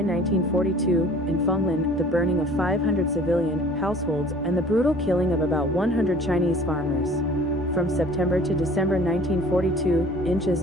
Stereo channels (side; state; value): both; normal; correlation 0.49